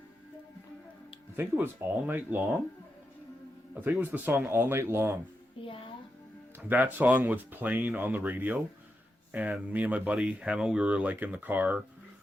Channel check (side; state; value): both; normal; correlation 0.87